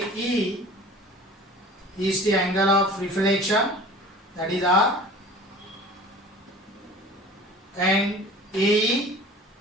is the angle of reflection, that is R. And AE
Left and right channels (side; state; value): both; normal; correlation 0.43